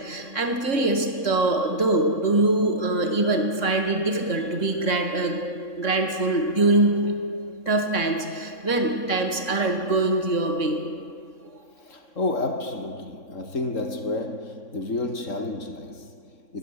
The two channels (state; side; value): late; right; 3.6 ms